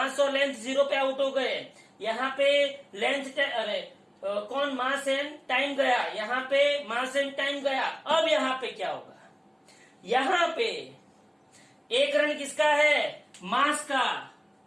और लेंथ 0 पे आउट हो गए। यहाँ पे कौन, मास एंड टाइम गया, यहाँ पे मास एंड टाइम गया। अब यहाँ पे क्या होगा, यहाँ पे 1 रन किसका है, मास का।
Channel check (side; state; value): both; identical; correlation 1.00